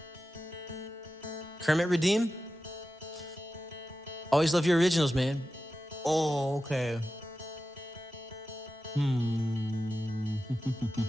Kermit Redeem? Always love your originals, man. Oh, okay.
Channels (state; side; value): normal; both; correlation 0.93